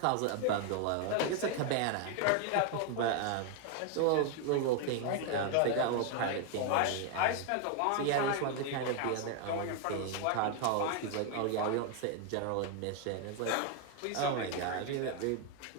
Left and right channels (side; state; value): both; different; correlation 0.01